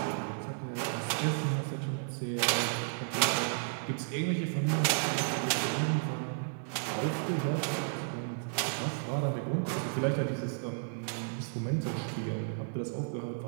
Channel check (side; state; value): left; silent; digital silence